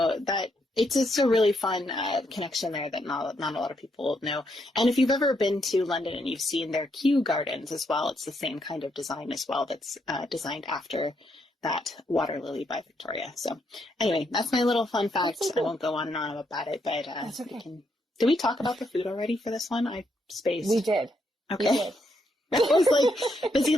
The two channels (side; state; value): both; normal; correlation 0.77